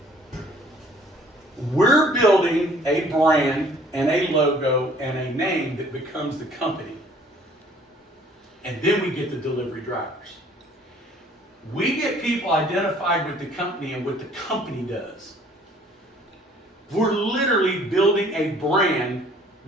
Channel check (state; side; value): normal; both; correlation 0.56